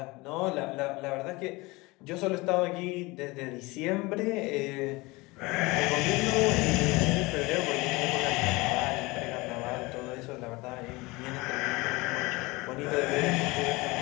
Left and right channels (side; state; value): right; quieter; 23.2 dB